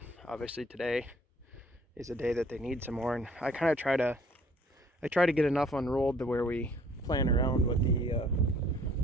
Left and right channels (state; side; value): normal; both; correlation 0.58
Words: obviously today is a day that they need some more, and I kind of try to get enough unrolled to where we plan around what the